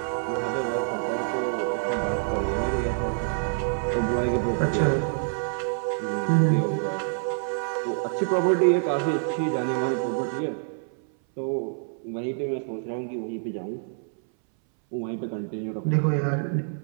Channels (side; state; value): left; silent; 60 dB below the other